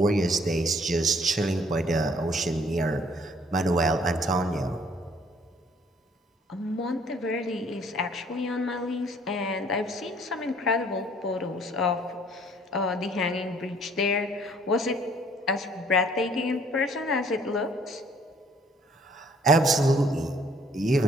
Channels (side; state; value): both; normal; correlation 0.60